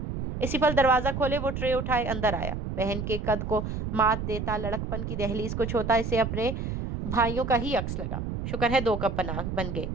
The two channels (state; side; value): noise; right; rumble, 4 dB below the sound